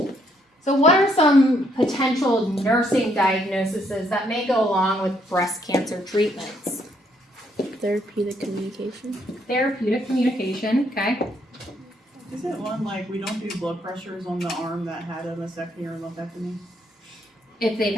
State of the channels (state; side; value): normal; both; correlation 0.71